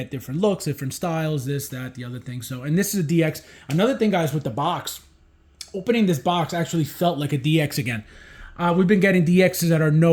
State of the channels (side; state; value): both; identical; correlation 1.00